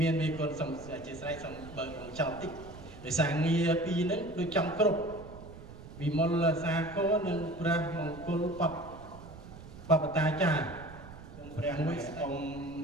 ានមេគុណសូមអធិស្ឋានសូមបើកចោលតិច ដោយសារងារពីរហ្នឹងដូចចំគ្រប់វិមលសាគរនិងព្រះមង្គលបព្វតាចារ្យសូមព្រះមួយអង្គ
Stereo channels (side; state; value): right; noise; rumble, 15 dB below the sound